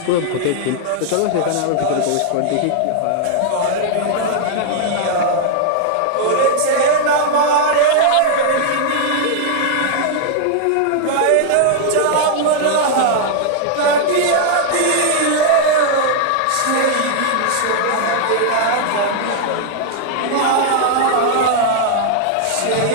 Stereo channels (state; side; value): different; both; correlation 0.00